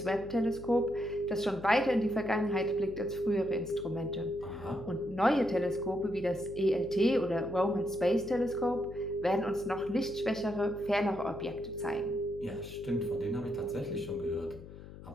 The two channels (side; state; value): left; noise; hum, 15 dB below the sound